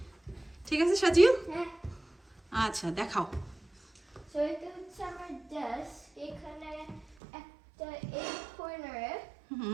ঠিক আছে সাজিল? আচ্ছা দেখাও। সো এটা হচ্ছে আমার ডেস্ক। এখানে একটা এই কর্নারে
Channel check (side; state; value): left; drops out; at 7.2 s